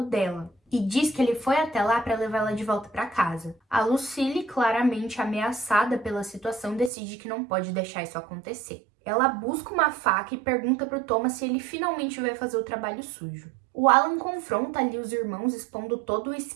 dela e diz que ele foi até lá para levar ela de volta para casa. A Lucille, claramente ameaçada pela situação, decide que não pode deixar isso acontecer. Ela busca uma faca e pergunta pro Thomas se ele finalmente vai fazer o trabalho sujo. O Alan confronta ali os irmãos, expondo todo o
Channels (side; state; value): left; drops out; at 6.9 s